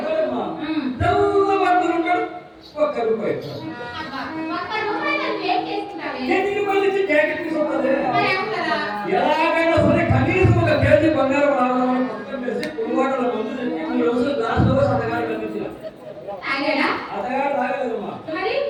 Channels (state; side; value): identical; both; correlation 1.00